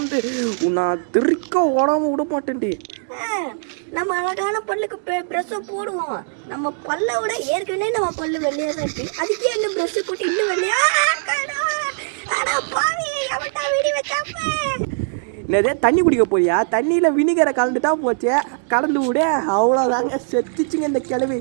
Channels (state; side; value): silent; left; digital silence